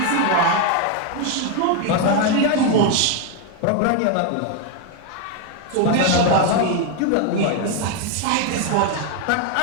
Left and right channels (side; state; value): both; different; correlation 0.01